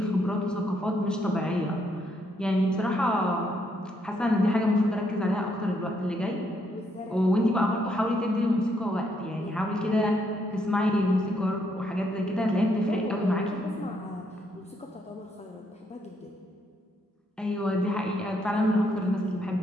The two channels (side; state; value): both; normal; correlation 0.74